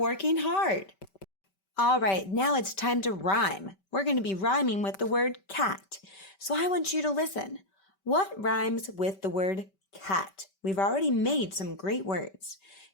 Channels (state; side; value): late; right; 5.2 ms